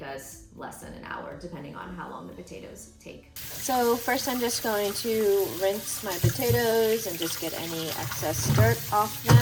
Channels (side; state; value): both; identical; correlation 1.00